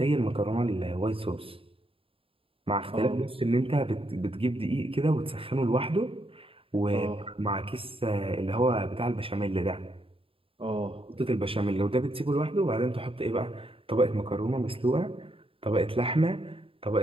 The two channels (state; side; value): late; left; 0.27 ms